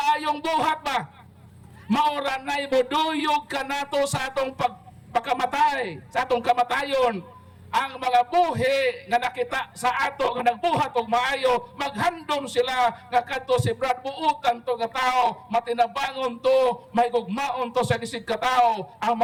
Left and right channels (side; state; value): both; identical; correlation 1.00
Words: buhat ba? Mauranay moduyog kanato sa atong pagkamatay, sa atong kamatayon. Ang mga buhi nga nakita sa ato nga nagbuhat og maayo, maghandom sila nga kadto si Brad buutan to nga tao, matinabangon to, may gugmaon to sa isig ka tao, ang